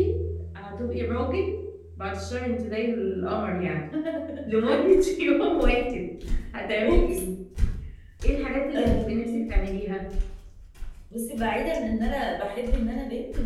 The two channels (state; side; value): identical; both; correlation 1.00